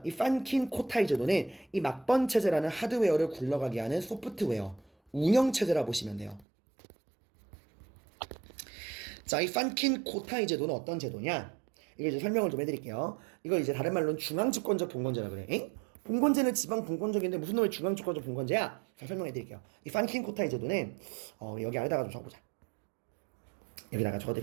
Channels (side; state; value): left; drops out; at 6.5 s